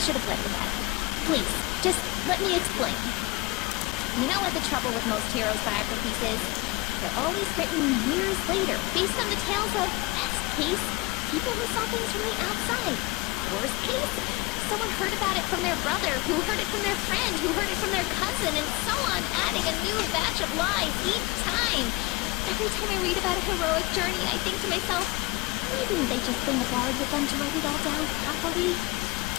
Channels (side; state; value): right; quieter; 23.0 dB